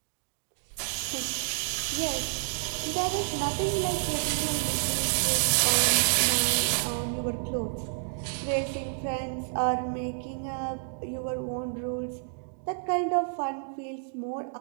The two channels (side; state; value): left; silent; digital silence